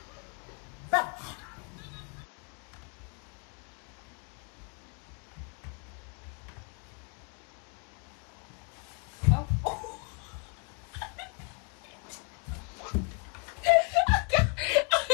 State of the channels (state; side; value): quieter; right; 38.1 dB